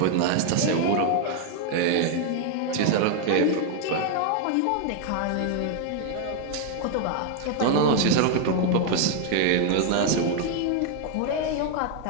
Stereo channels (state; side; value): different; both; correlation 0.00